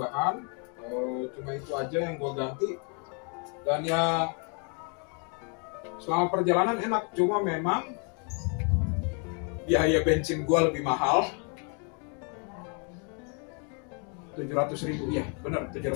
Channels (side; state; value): right; quieter; 38.3 dB